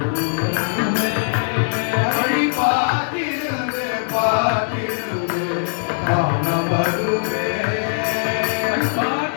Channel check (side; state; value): right; silent; 65 dB below the other